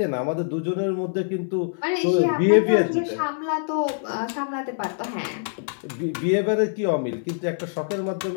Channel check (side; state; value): right; silent; 59 dB below the other